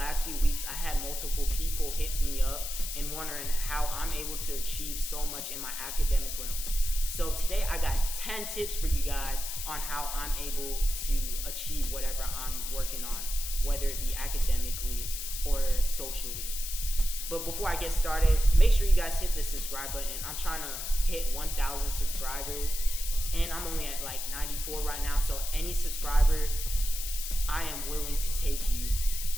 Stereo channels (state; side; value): noise; left; hiss, 6 dB below the sound